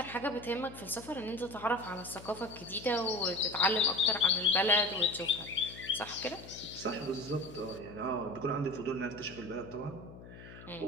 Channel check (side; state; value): left; noise; hum, 16 dB below the sound